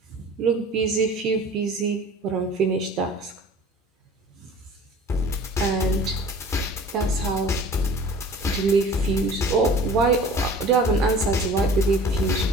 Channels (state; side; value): normal; both; correlation 0.45